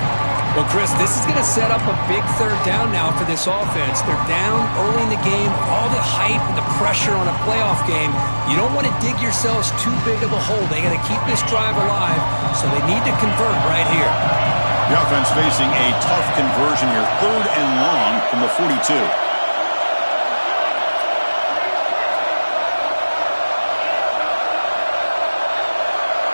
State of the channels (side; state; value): both; inverted; correlation -1.00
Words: Well, Chris, this is going to set up a big 3rd down now for this offense. They're down early in the game. All the hype and the pressure on a playoff game. You don't want to dig yourselves too big of a hole. They got to keep this drive alive, so they need to convert right here. The offense facing a tough conversion here. 3rd and long from the 42.